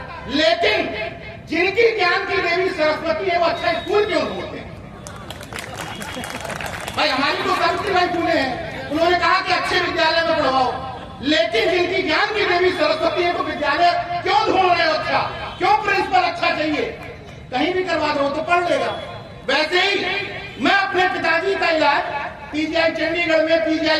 लेकिन जिनकी ज्ञान की देवी सरस्वती है वो अच्छा स्कूल क्यों ढूंढते हैं? भाई हमारी तो सावित्रीबाई फुले हैं, उन्होंने कहा कि अच्छे विद्यालय में पढ़वाओ, लेकिन जिनकी ज्ञान की देवी सरस्वती है तो विद्यालय क्यों ढूंढ रहे हो? अच्छा क्यों प्रिंसिपल अच्छा चाहिए? कहीं भी करवा दो तो पढ़ लेगा। वैसे ही मैं अपने पिताजी का इलाज पीजीआई चंडीगढ़ में,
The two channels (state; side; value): identical; both; correlation 1.00